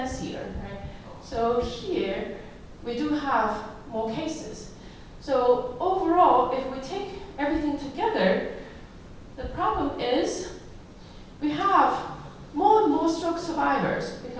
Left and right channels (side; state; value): both; identical; correlation 1.00